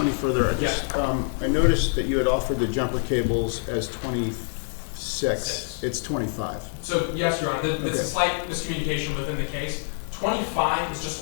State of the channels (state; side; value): silent; right; digital silence